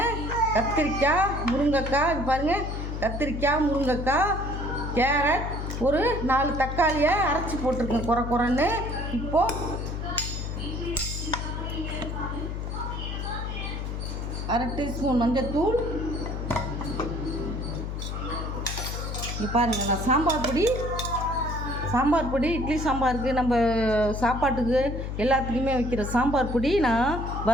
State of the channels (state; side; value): noise; left; hum, 4 dB below the sound